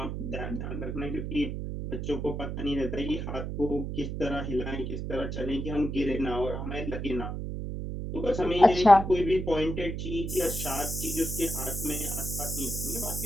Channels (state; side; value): noise; right; hum, 4 dB below the sound